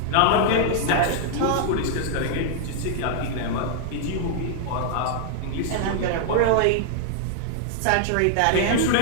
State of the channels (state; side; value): different; both; correlation -0.01